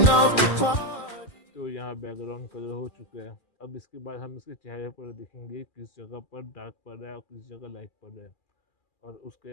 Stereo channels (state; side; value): late; right; 2.4 ms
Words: तो यहाँ बैकग्राउंड कलर हो चुका है। अब इसके बाद हम इसके चेहरे पर देखेंगे किस जगह पर डार्क पड़ रहा है और किस जगह लाइट पड़ रहा है, और